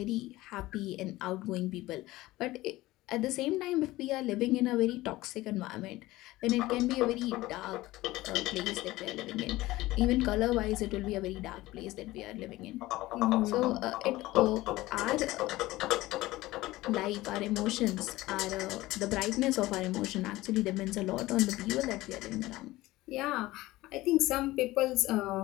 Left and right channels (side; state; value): right; quieter; 18.1 dB